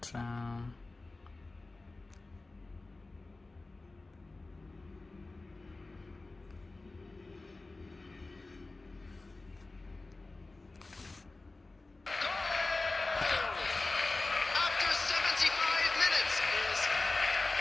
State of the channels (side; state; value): right; quieter; 3.3 dB